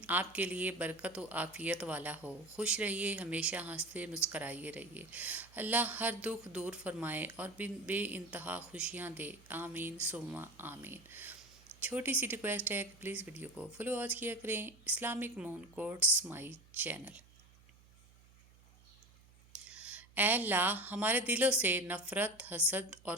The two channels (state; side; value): noise; right; hum, 26 dB below the sound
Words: آپ کے لیے برکت و عافیت والا ہو۔ خوش رہیے، ہمیشہ ہنستے مسکرائے رہیے۔ اللہ ہر دکھ دور فرمائے اور بے انتہا خوشیاں دے، آمین ثم آمین۔ چھوٹی سی ریکویسٹ ہے کہ پلیز ویڈیو کو فالو آج کیا کریں۔ Islamic moon quotes my channel. اے اللہ، ہمارے دلوں سے نفرت، حسد اور